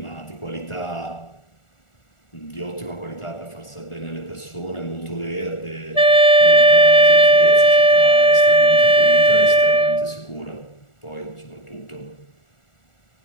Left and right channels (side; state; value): right; late; 1.4 ms